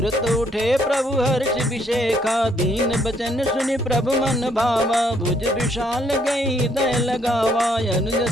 उठे प्रभु हर्ष विशेखा। दीन बचन सुनि प्रभु मन भावा, भुज विशाल गई दय लगावा। अनुज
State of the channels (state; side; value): normal; both; correlation 0.69